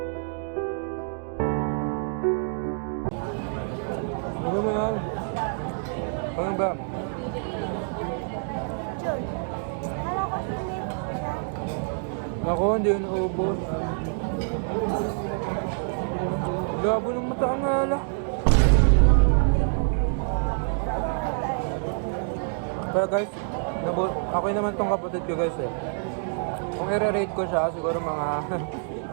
Ano mo yan? Ano ba? Jun. Kala ko sinip siya. Ako, hindi yun naubos. Labo ng mata ang ala. Pero guys, ako naman tong kapatid ko guys eh. Kung i-rate ko siya, siguro mga...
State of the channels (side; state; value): left; silent; 61 dB below the other